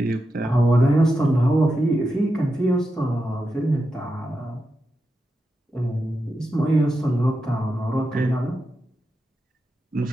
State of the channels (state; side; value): normal; both; correlation 0.88